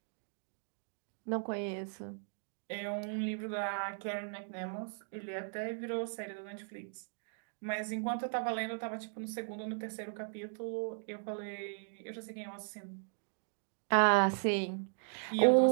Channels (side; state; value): left; silent; 53 dB below the other